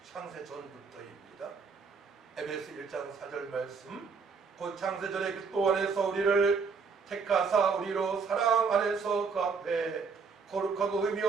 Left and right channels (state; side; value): quieter; left; 5.2 dB